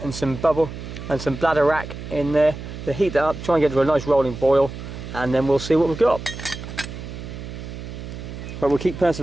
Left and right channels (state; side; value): noise; right; hum, 10 dB below the sound